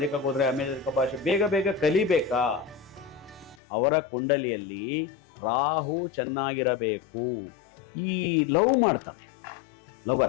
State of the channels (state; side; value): drops out; right; at 3.6 s